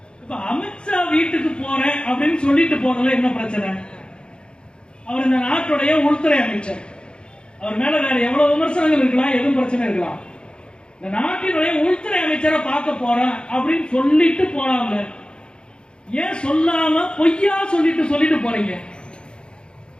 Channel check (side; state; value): right; late; 0.052 ms